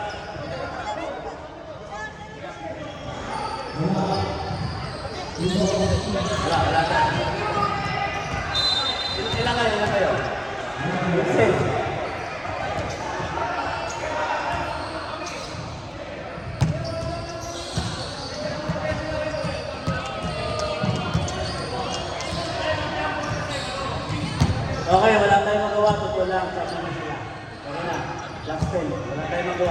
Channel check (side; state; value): both; identical; correlation 1.00